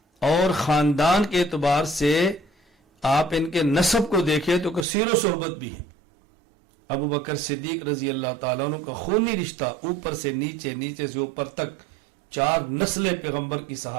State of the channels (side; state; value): left; drops out; at 4.9 s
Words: اور خاندان کے اعتبار سے آپ ان کے نسب کو دیکھیں تو کثیر و صحبت بھی ہے. ابو بکر صدیق رضی اللہ تعالیٰ عنہ کا خونی رشتہ اوپر سے نیچے، نیچے سے اوپر تک 4 نسلیں پیغمبر کی